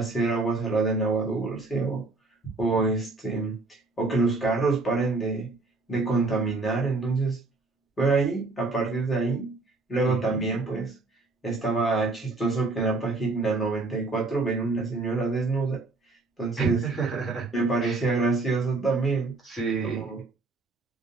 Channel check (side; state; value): left; quieter; 3.5 dB